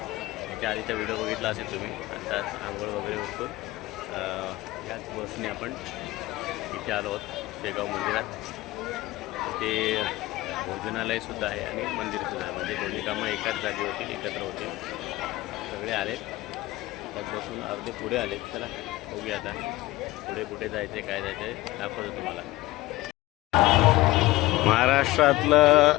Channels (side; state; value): right; quieter; 18.7 dB